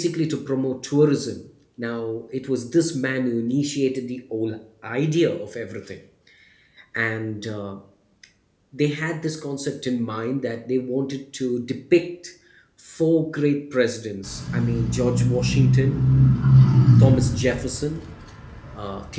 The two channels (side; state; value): both; identical; correlation 1.00